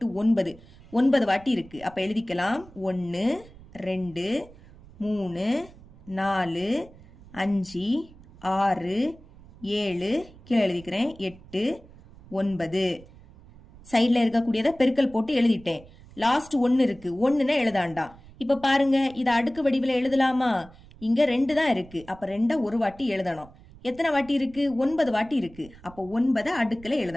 9. 9 வாட்டி இருக்கு. அப்ப எழுதிக்கலாம். 1 2 3 4 5 6 7. கீழே எழுதிக்கிறேன். 8 9. சைட்ல இருக்கக்கூடியத பெருக்கல் போட்டு எழுதிட்டேன். லாஸ்ட் 1 இருக்கு. 1ன்னு எழுதாண்டா. இப்ப பாருங்க, இத அடுக்கு வடிவில எழுதலாமா? இங்க 2 தான் இருக்கு. அப்ப 2 ஒரு வாட்டி எழுதணும். எத்தனை வாட்டி இருக்கு? 9 வாட்டி இருக்கு. அப்ப 9 அடுக்குல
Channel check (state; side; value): noise; right; rumble, 22 dB below the sound